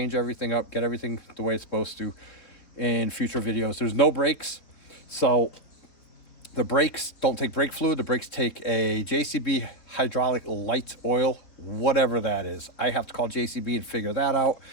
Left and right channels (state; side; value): late; right; 3.9 ms